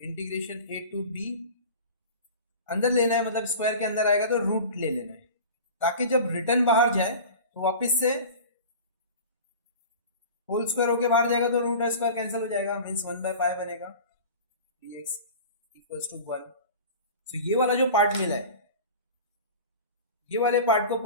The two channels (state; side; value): inverted; both; correlation -0.37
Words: a to b अंदर लेना है, मतलब स्क्वायर के अंदर आएगा तो रूट ले लेना है, ताकि जब रिटर्न बाहर जाए तो वापस से होल स्क्वायर होके बाहर जाएगा तो रूट स्क्वायर कैंसिल हो जाएगा, मींस 1 बाय पाई बनेगा dx इक्वल्स टू 1। सो ये वाला जो पार्ट मिला है, ये वाले पार्ट को